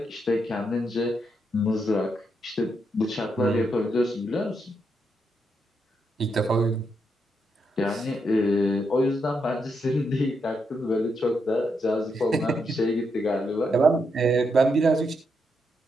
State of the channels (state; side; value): normal; both; correlation 0.80